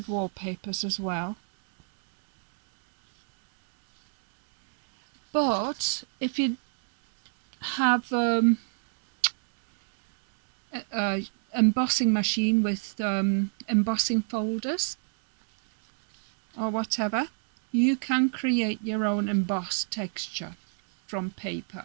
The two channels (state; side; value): silent; left; 60 dB below the other